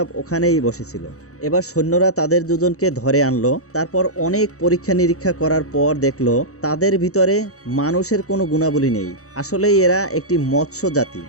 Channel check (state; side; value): late; right; 0.65 ms